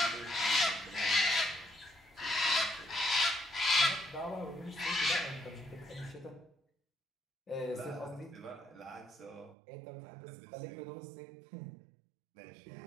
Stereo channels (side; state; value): left; drops out; at 9.6 s